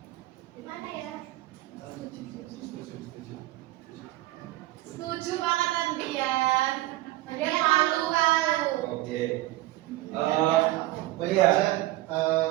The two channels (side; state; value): left; quieter; 17.3 dB